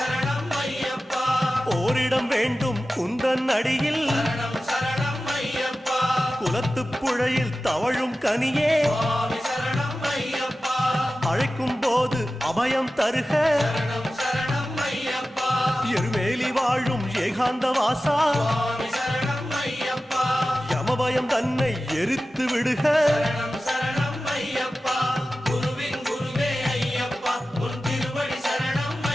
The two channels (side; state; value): both; normal; correlation 0.95